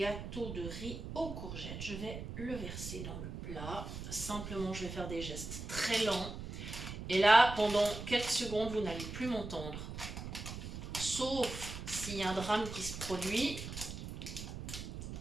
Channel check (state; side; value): noise; right; rumble, 8 dB below the sound